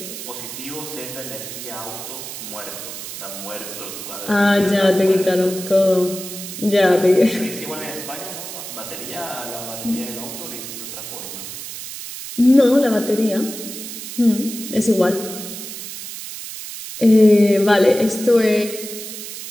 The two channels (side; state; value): right; noise; hiss, 9 dB below the sound